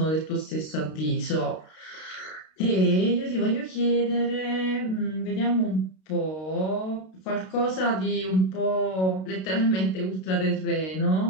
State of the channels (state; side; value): late; right; 32 ms